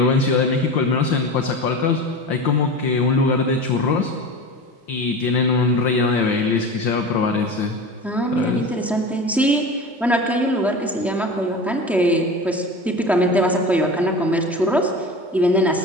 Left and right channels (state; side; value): normal; both; correlation 0.31